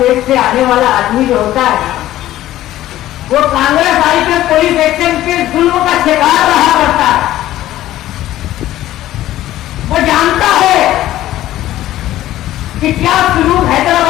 से आने वाला आदमी जो होता है वो कांग्रेस आई के पुलिस एक्शन के जुल्म का शिकार रहा करता है। वो जानता है कि क्या सुलूक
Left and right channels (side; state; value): right; quieter; 14.2 dB